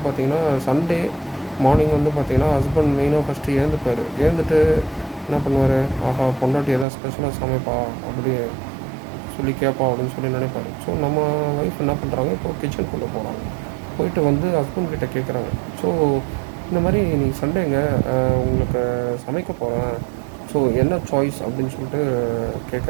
பார்த்திங்கன்னா சண்டே மார்னிங் வந்து பார்த்திங்கன்னா ஹஸ்பண்ட் மெயினாக ஃபஸ்ட்டு எழுந்துப்பார். எழுந்துட்டு என்ன பண்ணுவார், ஆஹா பொண்டாட்டி எதாவது ஸ்பெஷலாக சமைப்பா அப்படி சொல்லி கேட்பா அப்படின்னு சொல்லி நினைப்பாரு. ஸோ நம்ம ஒய்ஃப் என்ன பண்ணுறாங்க, இப்போது கிச்சனுக்குள்ளே போகிறாங்க. போயிட்டு வந்து ஹஸ்பண்ட் கிட்டே கேட்குறாங்க. ஸோ இந்த மாதிரி நீங்கள் சண்டேங்க உங்களுக்கு சமைக்க போகிறேன், ஸோ என்ன சாய்ஸ் அப்படின்னு சொல்லிட்டு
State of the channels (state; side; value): drops out; left; at 6.9 s